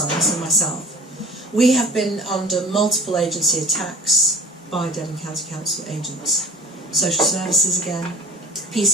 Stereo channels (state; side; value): normal; both; correlation 0.43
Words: and myself. We have been under multiple agency attacks by Devon County Council agents, social services again,